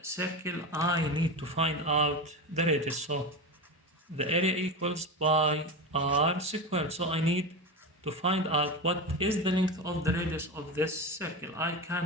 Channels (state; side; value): normal; both; correlation 0.21